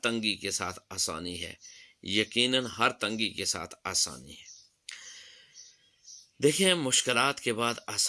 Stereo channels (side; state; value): both; identical; correlation 1.00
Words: تنگی کے ساتھ آسانی ہے، یقیناً ہر تنگی کے ساتھ آسانی ہے۔ دیکھیں مشکلات کے بعد